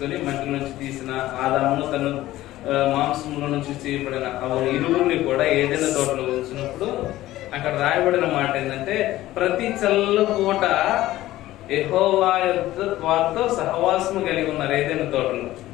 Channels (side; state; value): right; quieter; 15.6 dB